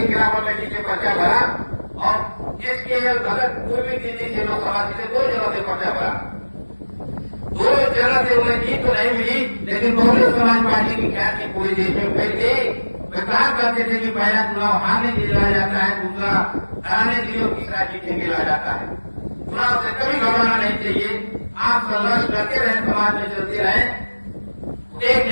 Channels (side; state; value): both; inverted; correlation -1.00